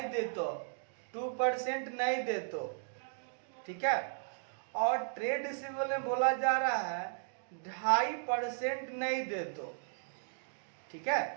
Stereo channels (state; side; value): silent; left; digital silence